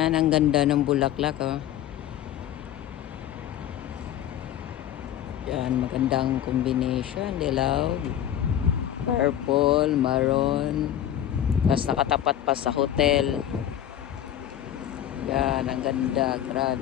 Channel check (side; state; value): right; quieter; 11.1 dB